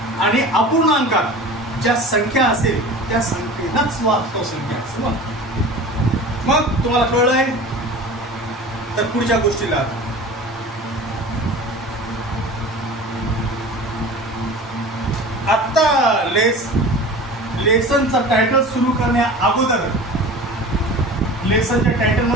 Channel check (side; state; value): both; normal; correlation 0.37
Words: अपूर्णांकात ज्या संख्या असेल त्या संख्येलाच वास्तव संख्या असेल. मग तुम्हाला कळलंय तर पुढच्या गोष्टीला आता लेसनचा टायटल सुरू करण्या अगोदर लेसनच्या टायटल